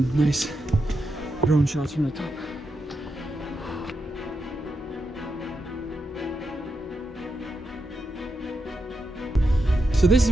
nice drone shots from the top. So this is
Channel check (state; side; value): normal; both; correlation 0.85